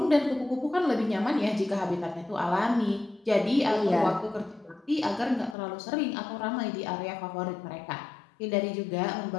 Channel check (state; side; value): drops out; right; at 5.6 s